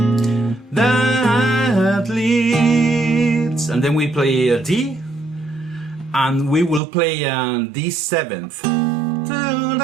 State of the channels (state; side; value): drops out; left; at 6.8 s